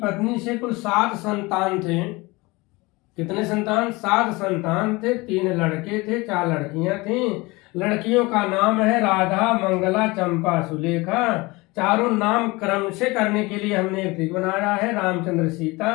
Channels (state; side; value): quieter; right; 23.4 dB